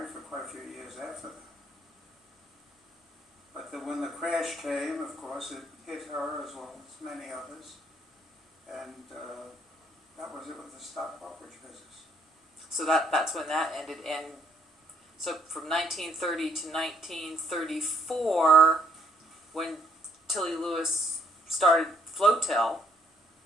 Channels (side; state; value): both; normal; correlation 0.67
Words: for quite a few years after that. But when the crash came, of course, it hit her as well as many others, and that was it with the stock brokerage business. So that's when that ended. And so from 1930 to 1934, when Tilly Lewis started Flotel.